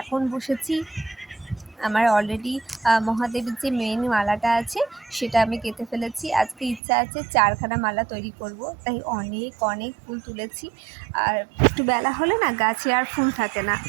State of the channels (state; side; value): drops out; left; at 6.8 s